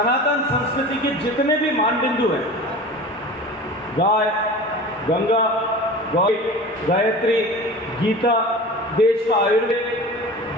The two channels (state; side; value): normal; both; correlation 0.36